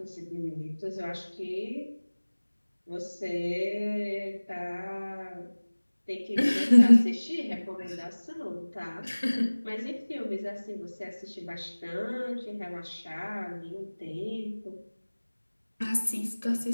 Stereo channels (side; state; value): both; inverted; correlation -1.00